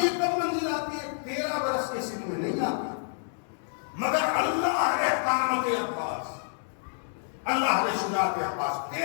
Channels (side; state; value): right; silent; digital silence